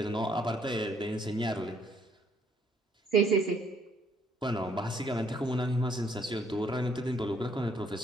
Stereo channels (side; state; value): both; normal; correlation 0.67